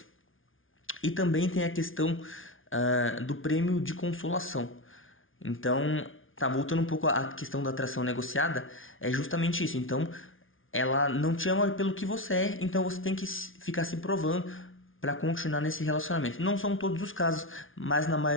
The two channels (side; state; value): right; late; 0.58 ms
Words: E também tem a questão do prêmio de consolação. Então, voltando um pouco à questão da atração negociada, é justamente isso. Então, ela não te ama pelo que você é, então você tem que ficar se provando para continuar nesse relacionamento. Não são todos os casos, mas na